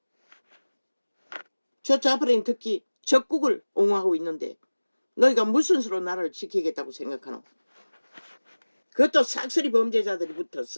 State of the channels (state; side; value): inverted; both; correlation -1.00